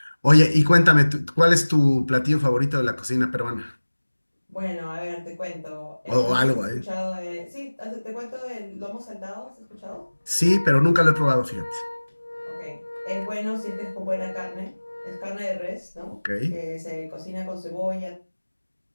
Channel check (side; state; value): both; inverted; correlation -1.00